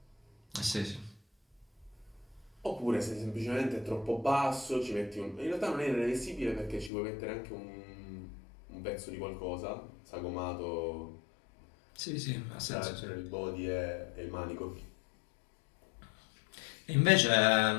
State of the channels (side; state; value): right; drops out; at 6.9 s